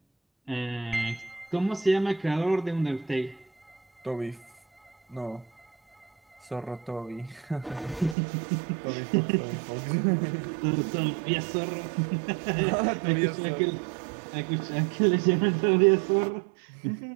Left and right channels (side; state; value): left; drops out; at 8.2 s